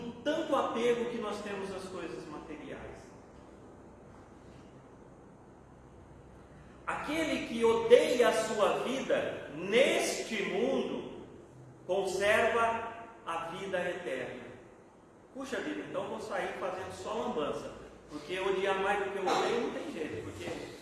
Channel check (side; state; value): both; identical; correlation 1.00